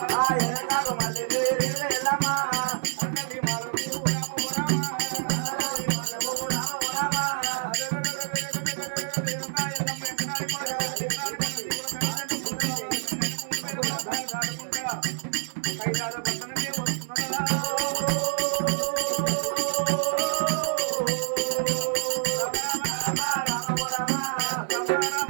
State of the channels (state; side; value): silent; left; digital silence